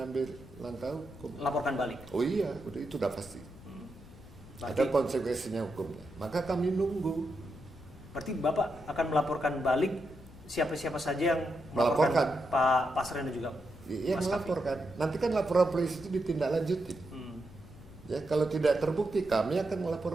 langkah hukum. Laporkan balik. Oh iya, itu udah pasti. Berarti, Ada konsekuensinya hukumnya. Maka kami nunggu. berarti Bapak akan melaporkan balik siapa-siapa saja yang Melaporkan. Pak Pasren dan juga Iya Mas Kavi. melaporkan. Nanti kan laporan polisi itu ditindaklanjuti. Ya kalau tidak terbukti kami akan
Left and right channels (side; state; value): left; noise; rumble, 19 dB below the sound